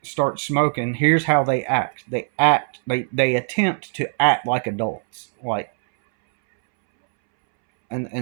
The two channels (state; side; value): silent; left; 64 dB below the other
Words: starts smoking, here's how they act. They attempt to act like adults. Like,